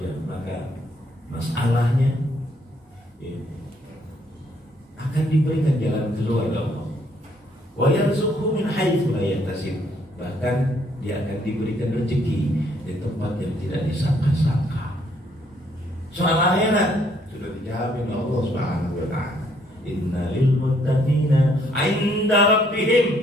maka masalahnya akan diberikan jalan keluar oleh Allah. Wa yarzuqhu min haitsu la yahtasib, bahkan dia akan diberikan rezeki di tempat yang tidak disangka-sangka. Soal akhirat sudah dijamin Allah Subhanahu wa taala. Inna lil muttaqina 'inda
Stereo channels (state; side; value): normal; both; correlation 0.68